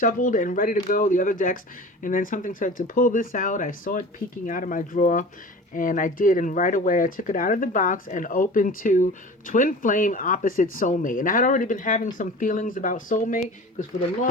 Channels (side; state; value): both; normal; correlation 0.38